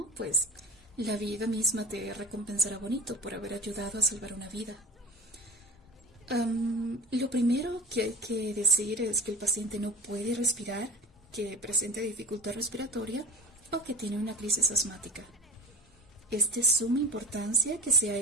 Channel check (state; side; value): normal; both; correlation 0.36